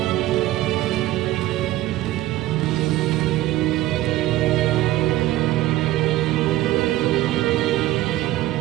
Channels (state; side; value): quieter; left; 15.7 dB